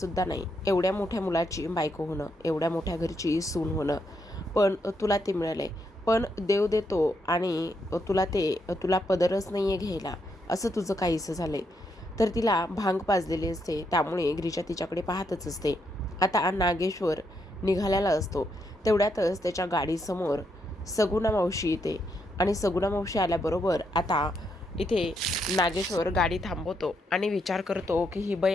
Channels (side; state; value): both; normal; correlation 0.78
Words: नाही एवढ्या मोठ्या मुलाची बायको होणं, एवढ्या मोठ्या घरची सून होणं, पण तुला ते मिळालंय. पण देव देतो आणि तुला पदरच नाही आहे घ्यायला, असं तुझं काहीसं झालंय. तर तिला भांग पाजलेली असते, त्यामुळे गिरिजा तिच्याकडे पाहतच असते. आता नागेश्वर निघालेला असतो. तेवढ्यातच त्याच्या गाडीसमोर सगुणा मावशी येते आणि सगुणा मावशी आल्याबरोबर आता इथे नागेश्वर गाडी थांबवतो आणि विचार करतो की ही